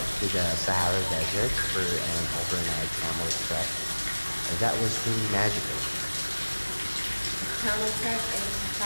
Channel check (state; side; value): inverted; both; correlation -1.00